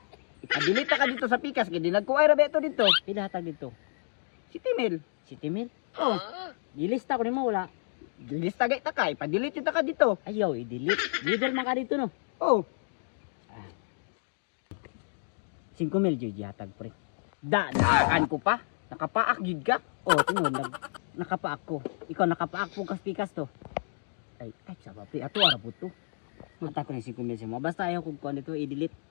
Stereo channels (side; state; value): right; silent; digital silence